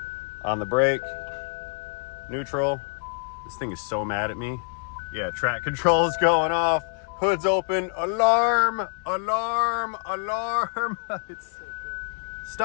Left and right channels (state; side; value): silent; right; 61 dB below the other